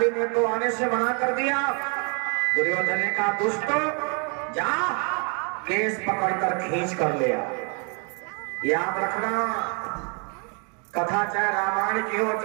ने तो आने से मना कर दिया। दुर्योधन ने कहा, दुष्टो जा केस पकड़कर खींच कर ले आ। याद रखना, कथा चाहे रामायण की हो,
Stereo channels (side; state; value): left; quieter; 36.8 dB